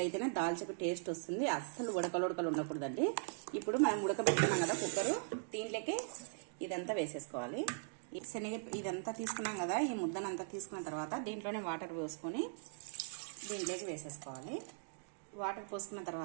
దాల్చకు టేస్ట్ వస్తుంది. అస్సలు ఉడకలు ఉండకూడదండి. ఇప్పుడు మనం ఉడకబెట్టుకున్నాం కదా కుక్కరు, దీంట్లోకి ఇదంతా వేసేసుకోవాలి. ఇదంతా తీసుకున్నాం కదా, ఈ ముద్దనంతా తీసుకున్న తర్వాత దీంట్లోనే వాటర్ పోసుకొని దీంట్లోకి వేసేసుకోవాలి. వాటర్ పోసుకున్న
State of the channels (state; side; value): silent; left; digital silence